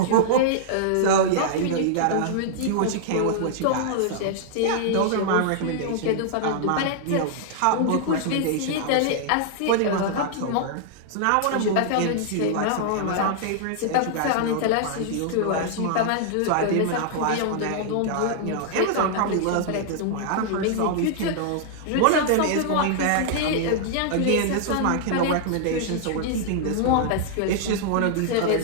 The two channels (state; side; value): different; both; correlation -0.01